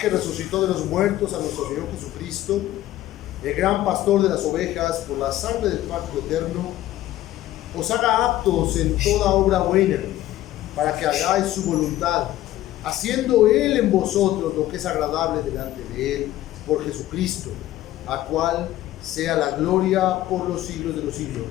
resucitó de los muertos a nuestro Señor Jesucristo, el gran pastor de las ovejas, por la sangre del pacto eterno, os haga aptos en toda obra buena, para que hagáis su voluntad, haciendo Él en vosotros lo que es agradable delante de Él, por Jesucristo, a cual sea la gloria por los siglos de los siglos.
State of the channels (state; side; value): quieter; right; 14.5 dB